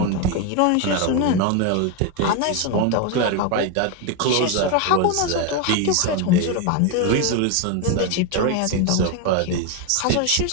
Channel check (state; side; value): different; both; correlation 0.02